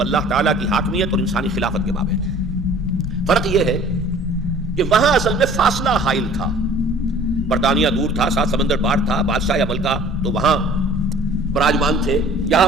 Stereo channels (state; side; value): normal; both; correlation 0.49